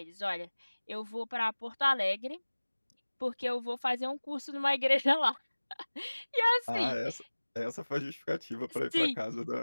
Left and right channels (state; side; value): inverted; both; correlation -1.00